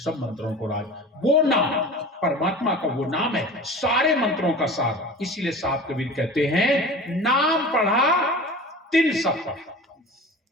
मंत्रों को राज। वो नाम परमात्मा का वो नाम है सारे मंत्रों का सार। इसीलिए साहब कबीर कहते हैं नाम पढ़ा तिन सब पढ़ा।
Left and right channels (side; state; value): both; normal; correlation 0.37